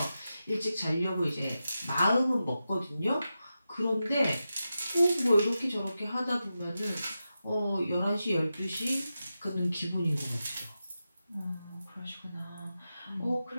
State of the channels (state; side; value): inverted; both; correlation -0.91